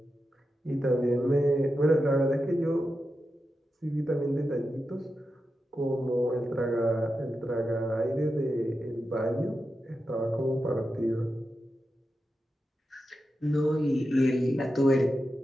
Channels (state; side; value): normal; both; correlation 0.90